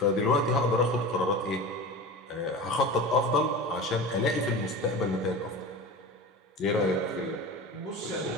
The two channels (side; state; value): both; normal; correlation 0.31